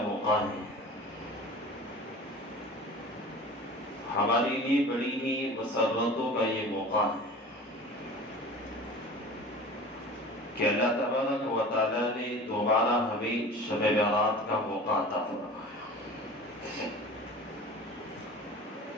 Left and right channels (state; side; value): normal; both; correlation 0.38